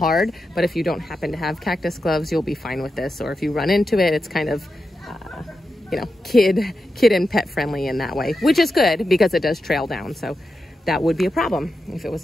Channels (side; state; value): both; normal; correlation 0.89